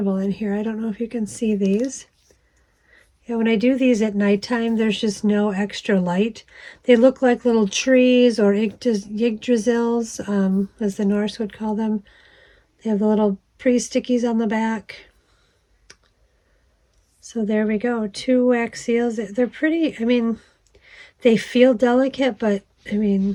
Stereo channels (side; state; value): both; identical; correlation 1.00